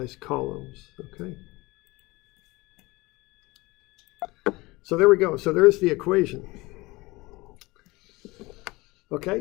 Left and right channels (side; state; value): right; quieter; 22.1 dB